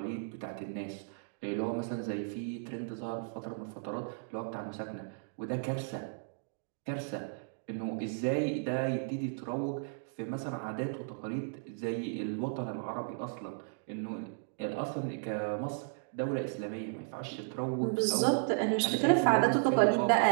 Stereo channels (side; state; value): left; silent; digital silence